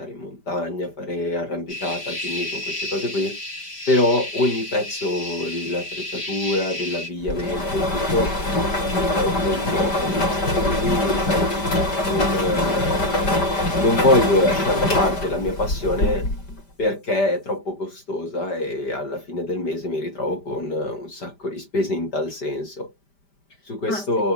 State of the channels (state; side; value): late; right; 5.1 ms